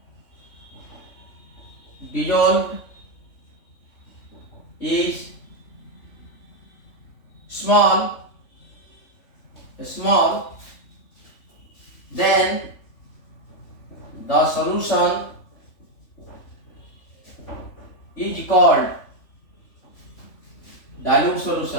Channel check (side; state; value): right; late; 3.5 ms